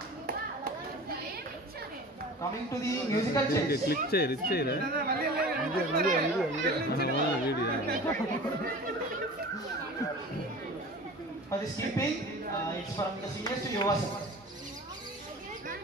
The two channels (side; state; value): both; normal; correlation 0.39